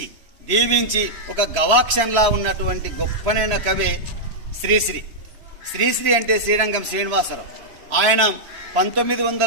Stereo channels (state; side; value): late; left; 3.0 ms